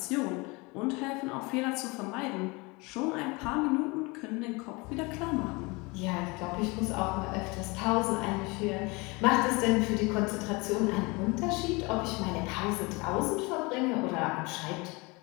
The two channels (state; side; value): quieter; right; 26.2 dB